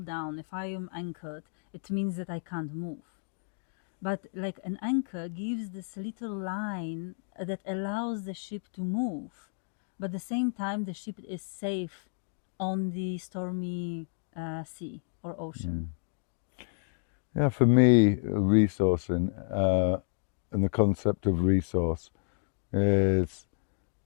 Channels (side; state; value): right; silent; digital silence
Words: if I am anchored, it means that I can't move. But like an anchor gives this little line that allows the ship to move, but at the same time the ship is safe on the stormy sea or ocean. Yeah, for me, resourcing and the concept of resource is